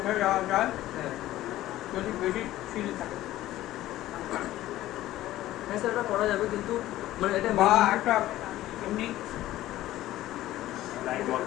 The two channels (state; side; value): quieter; right; 14.9 dB